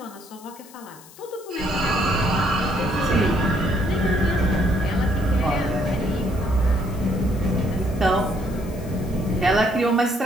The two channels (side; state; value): left; noise; hiss, 22 dB below the sound